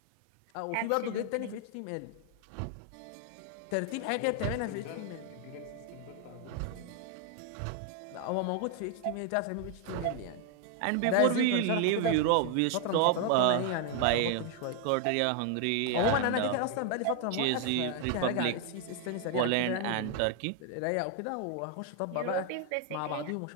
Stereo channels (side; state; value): both; different; correlation 0.00